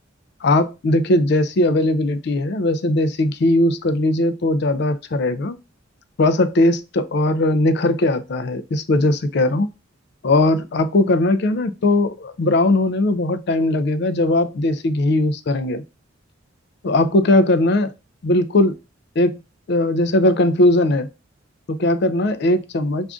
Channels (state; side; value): normal; both; correlation 0.36